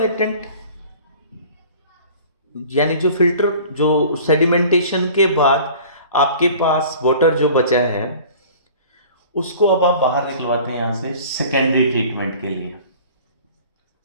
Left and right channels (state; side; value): inverted; both; correlation -0.46